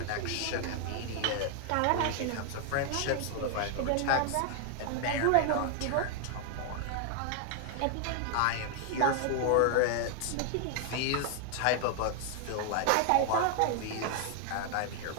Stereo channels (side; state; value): both; different; correlation 0.00